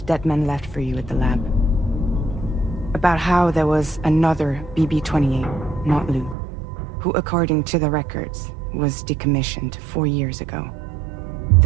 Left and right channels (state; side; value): drops out; left; at 6.4 s